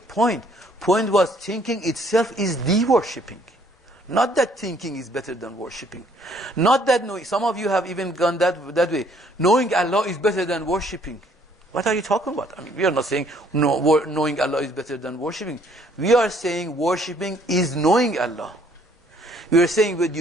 Point was thinking itself is the worshipping. Not that thinking is better than worshipping. Not that knowing. Some of you have even gone that way. Knowing Allah is better than worshipping. What are you talking about? I mean, we are not saying knowing Allah is better than worshipping. We are saying worshipping is knowing Allah. We are saying when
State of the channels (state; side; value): normal; both; correlation 0.63